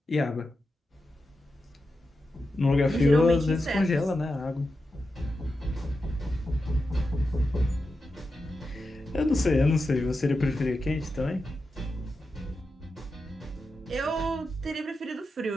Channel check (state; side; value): normal; both; correlation 0.89